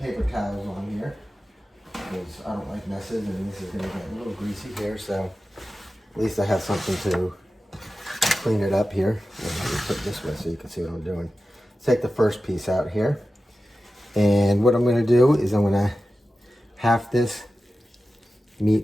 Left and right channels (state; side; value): normal; both; correlation 0.94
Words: towels on here, because I don't like messes, and this is going to get a little greasy here, so at least I have something to clean it up here. Let me put it this way so you can see what I'm doing. Take the first piece out here, and what I'm going to do is I'm going to half this